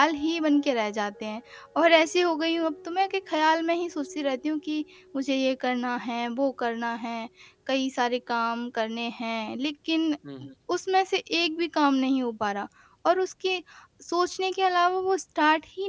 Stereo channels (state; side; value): identical; both; correlation 1.00